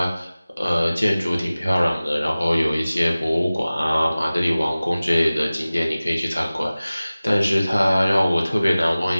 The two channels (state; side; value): inverted; both; correlation -0.98